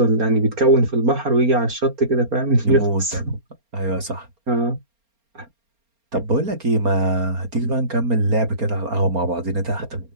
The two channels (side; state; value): left; late; 4.3 ms